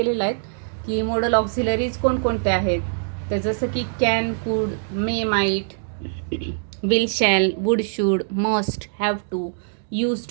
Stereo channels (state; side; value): silent; left; digital silence